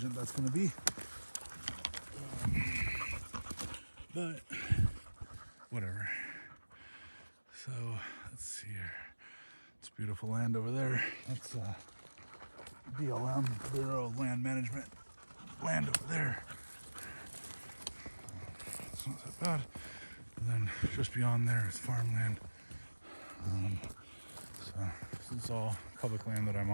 that's going to be. But whatever. So let's see here. It's beautiful land over there. That's BLM, Bureau of Land Management land over there. It's not that bad. And then just beyond there is farmland. So this is all public land that I'm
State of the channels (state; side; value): inverted; both; correlation -1.00